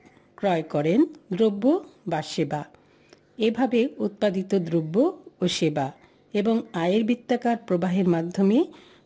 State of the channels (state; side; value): identical; both; correlation 1.00